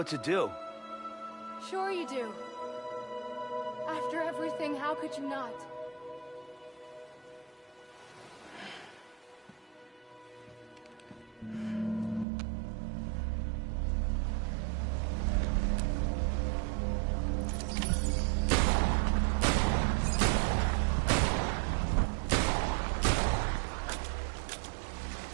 to do. Sure you do. After everything, how could you not?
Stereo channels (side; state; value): left; drops out; at 12.2 s